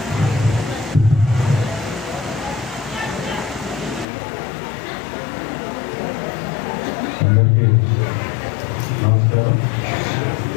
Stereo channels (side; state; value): right; drops out; at 4.0 s